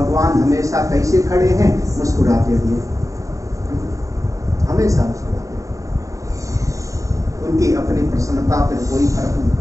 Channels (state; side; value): late; left; 0.16 ms